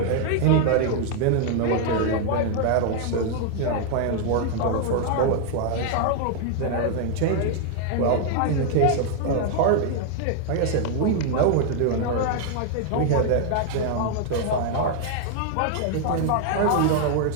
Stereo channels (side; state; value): both; different; correlation 0.00